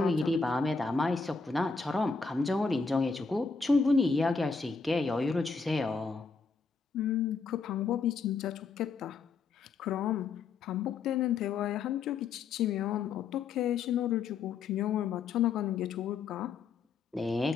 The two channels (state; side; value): quieter; right; 4.9 dB